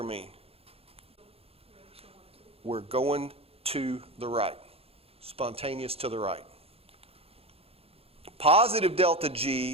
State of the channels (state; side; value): late; left; 0.28 ms